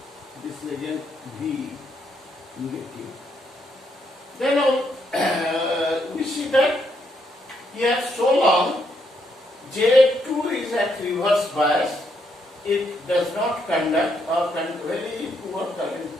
this is again V negative. Then we see that here so long J2 is at reverse bias, it does not conduct or very poor current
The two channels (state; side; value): normal; both; correlation 0.76